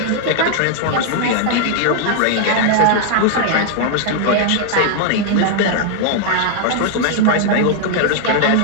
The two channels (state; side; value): different; both; correlation 0.00